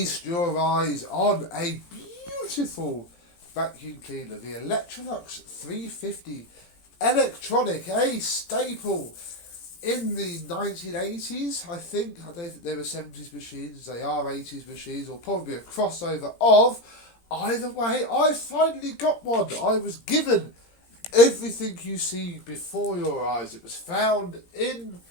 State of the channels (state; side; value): late; right; 17 ms